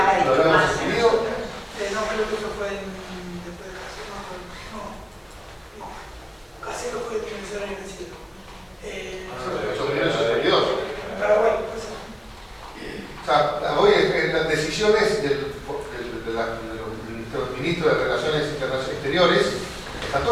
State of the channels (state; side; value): identical; both; correlation 1.00